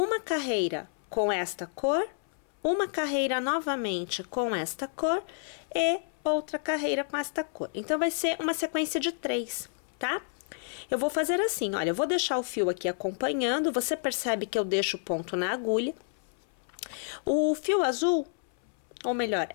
carreira com esta cor, uma carreira novamente com esta cor e outra carreira com esta cor. Então, vai ser uma sequência de 3, tá? Eu vou fazer assim, olha, eu vou deixar o fio aqui acompanhando, você percebe que eu deixo o ponto na agulha. O fio azul, ou melhor,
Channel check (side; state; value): right; silent; 58 dB below the other